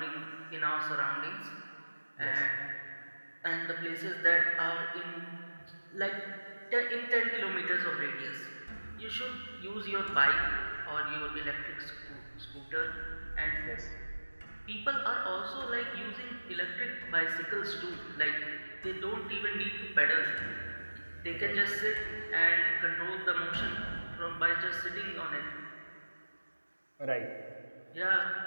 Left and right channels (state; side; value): inverted; both; correlation -1.00